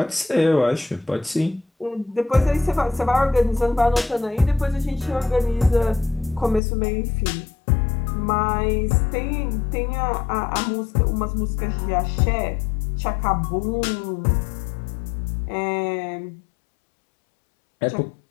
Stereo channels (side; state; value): right; drops out; at 6.6 s